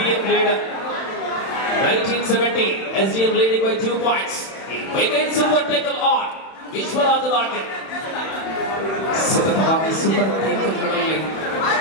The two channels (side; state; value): right; late; 31 ms